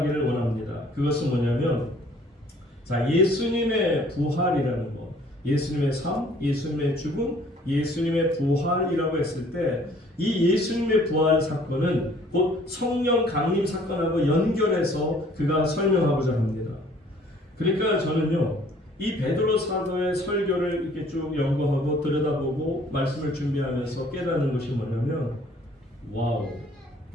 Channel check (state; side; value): normal; both; correlation 0.57